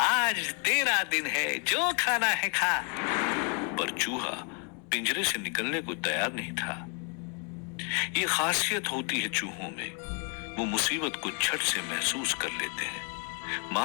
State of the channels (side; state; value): right; quieter; 38.7 dB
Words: तेरा दिन है, जो खाना है खा। पर चूहा पिंजरे से निकलने को तैयार नहीं था। ये खासियत होती है चूहों में, वो मुसीबत को झट से महसूस कर लेते हैं।